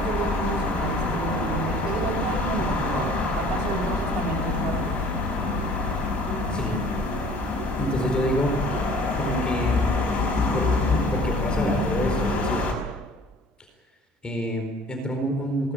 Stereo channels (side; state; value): both; normal; correlation 0.50